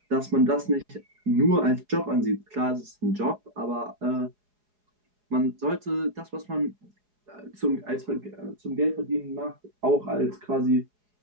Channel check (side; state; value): left; late; 4.8 ms